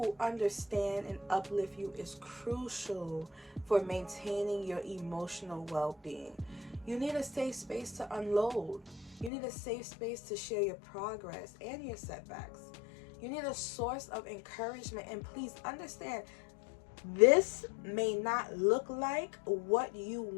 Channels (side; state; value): right; drops out; at 9.3 s